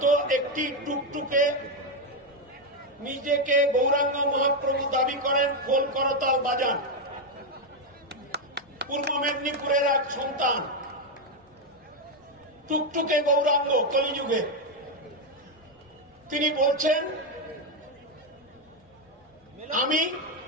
একটি টুকটুকে নিজেকে গৌরাঙ্গ মহাপ্রভু দাবি করেন, খোল করতাল বাজান। পূর্ব মেদিনীপুরের এক সন্তান, টুকটুকে গৌরাঙ্গ কলিযুগে, তিনি বলছেন, আমি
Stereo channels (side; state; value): both; normal; correlation 0.05